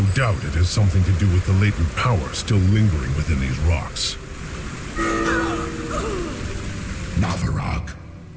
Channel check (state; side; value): identical; both; correlation 1.00